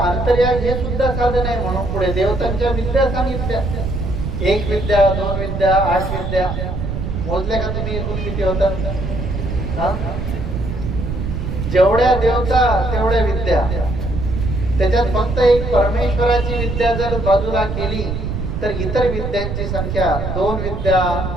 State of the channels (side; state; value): right; noise; rumble, 4 dB below the sound